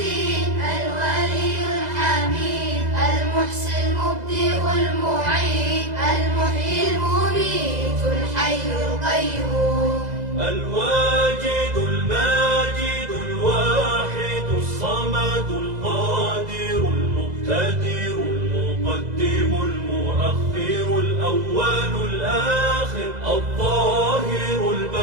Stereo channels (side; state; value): left; late; 2.0 ms